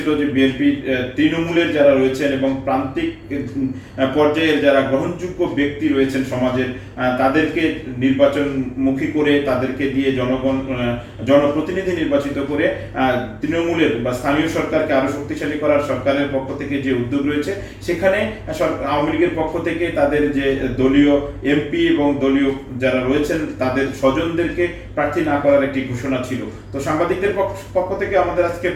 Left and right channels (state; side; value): identical; both; correlation 1.00